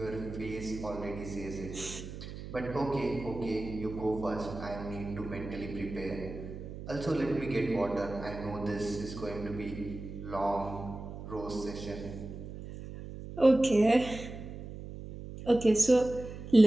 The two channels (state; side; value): noise; right; hum, 10 dB below the sound